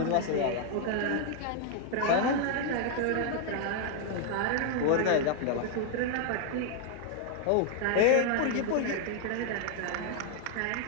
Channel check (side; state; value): both; different; correlation 0.00